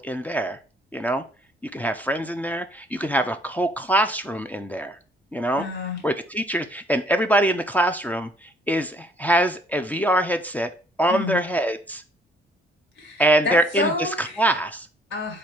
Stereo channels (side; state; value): both; normal; correlation 0.61